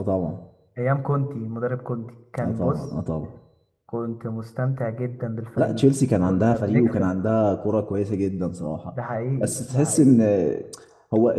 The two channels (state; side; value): identical; both; correlation 1.00